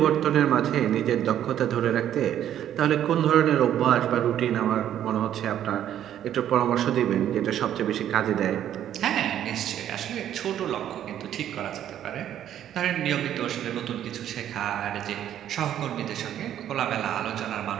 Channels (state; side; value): quieter; left; 10.8 dB